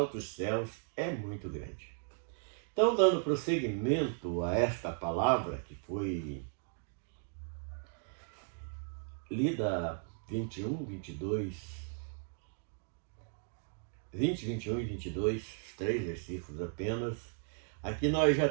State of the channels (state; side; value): silent; left; 54 dB below the other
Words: céus é muito grande. Então, dando prosseguimento a esta palavra que foi lida 20, 21 e 22, 3 versículos apenas. Aqui nós já